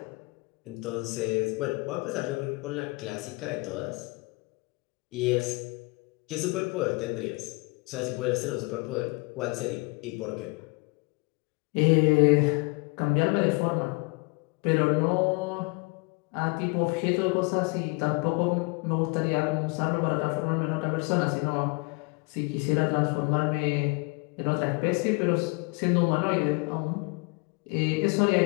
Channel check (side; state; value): right; quieter; 28.6 dB